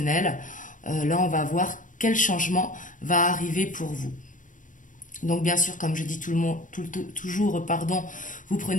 Là, on va voir quel changement va arriver pour vous. Donc bien sûr, comme je dis toujours, vous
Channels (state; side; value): late; right; 0.38 ms